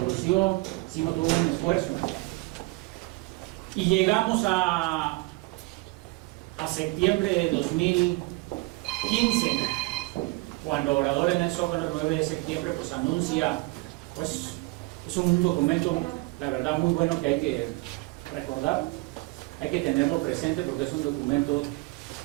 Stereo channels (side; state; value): left; quieter; 23.9 dB